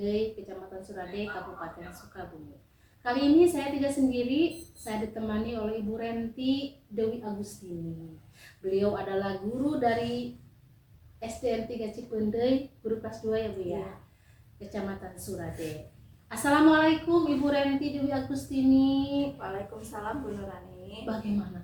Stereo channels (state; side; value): identical; both; correlation 1.00